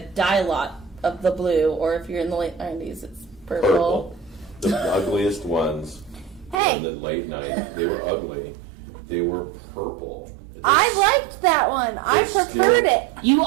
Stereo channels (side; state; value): left; drops out; at 6.6 s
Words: lot of the blue, or if you're in the late 90s, it's purple. The ugliest ones Hey. in the late 90s. They were ugly. They were purple. I liked that one. I They're preferred still- it. You